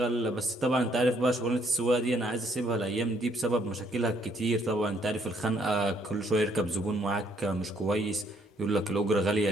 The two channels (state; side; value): normal; both; correlation 0.68